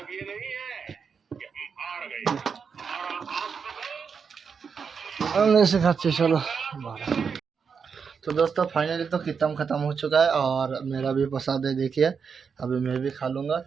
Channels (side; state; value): left; quieter; 6.1 dB